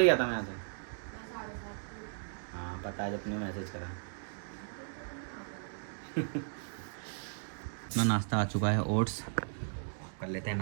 गया था मैं यहाँ से। हाँ पता है, जब तुमने मैसेज करा। तो नाश्ता आ चुका है, ओट्स कर लेते हैं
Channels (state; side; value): silent; left; digital silence